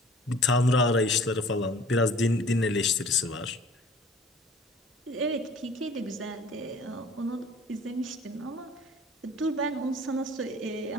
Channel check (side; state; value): both; normal; correlation 0.49